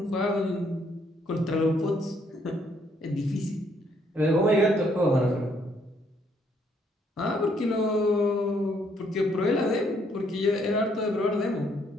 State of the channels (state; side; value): normal; both; correlation 0.69